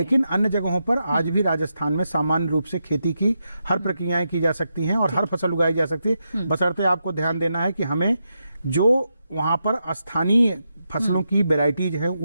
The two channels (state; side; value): inverted; both; correlation -0.85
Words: अन्य जगहों पर आज भी राजस्थान में सामान्य रूप से खेती की हर प्रक्रियाएं की जा सकती हैं और हर फसल उगाई जा सकती है। बशर्ते आपको ध्यान देना है कि हमें जो वहां पर स्थानीय फसलों की वेराइटीज हैं